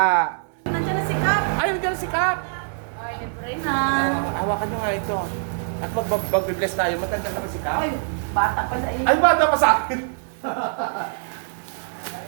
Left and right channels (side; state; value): left; silent; digital silence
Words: Nandiyan na si Kap. Ay, nandiyan na si Kap. Ay, libre na. Hawakan nyo nga ito. At mag-bless tayo. Matanda na ba si Kap? Ay, bata pa sa iyo. Ay, bata pa sa akin.